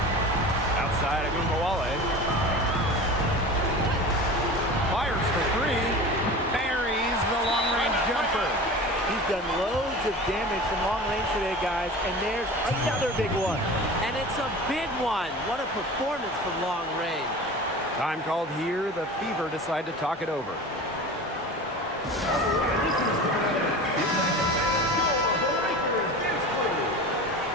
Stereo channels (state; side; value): normal; both; correlation 0.35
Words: Outside Agumbawale. Fires for 3. Buries the long-range jumper. He's done loads of damage from long range today, guys, and there's another big one. And it's a big one. What a performance from long range. Time called here. The Fever decide to talk it over.